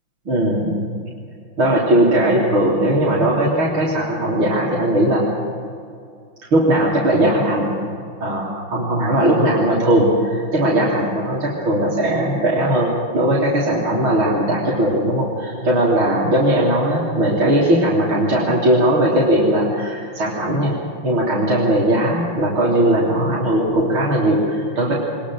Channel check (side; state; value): left; late; 5.8 ms